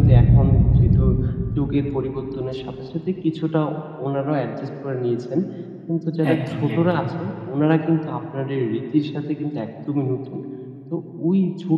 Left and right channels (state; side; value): identical; both; correlation 1.00